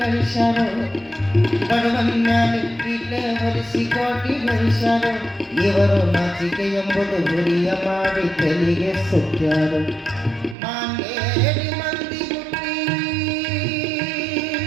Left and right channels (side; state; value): left; drops out; at 10.6 s